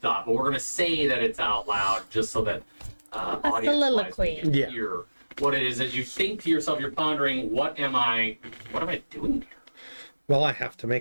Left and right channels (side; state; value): both; inverted; correlation -1.00